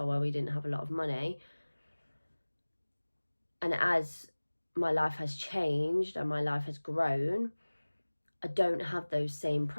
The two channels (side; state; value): both; inverted; correlation -1.00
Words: where we didn't have a lot of money. And as my life has changed and my life has grown, I don't have those same